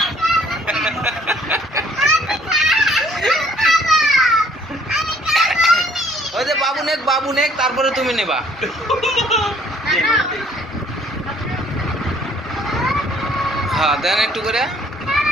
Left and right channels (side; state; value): both; normal; correlation 0.60